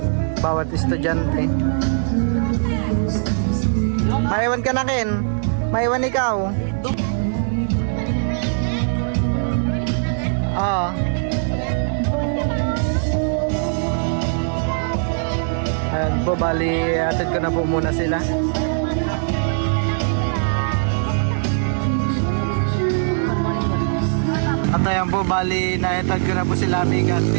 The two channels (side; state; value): left; silent; digital silence